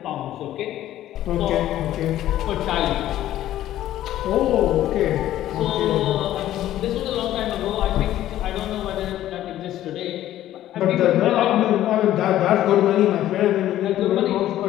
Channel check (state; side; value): quieter; right; 13.2 dB